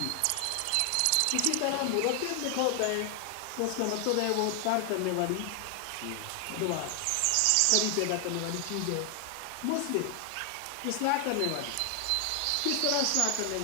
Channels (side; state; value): both; different; correlation 0.00